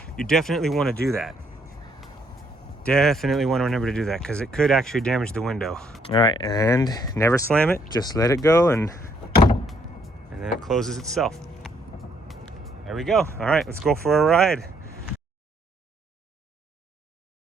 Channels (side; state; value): both; normal; correlation 0.69